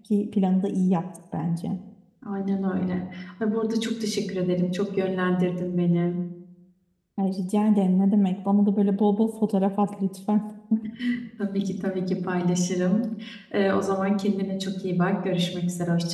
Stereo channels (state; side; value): identical; both; correlation 1.00